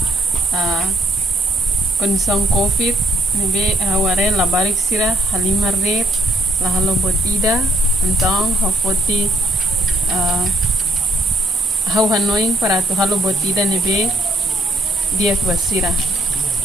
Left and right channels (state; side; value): normal; both; correlation 0.69